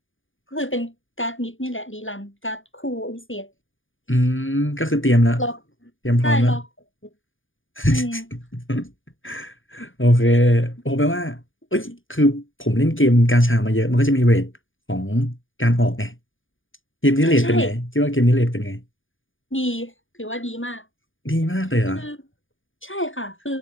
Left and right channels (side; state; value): right; late; 0.58 ms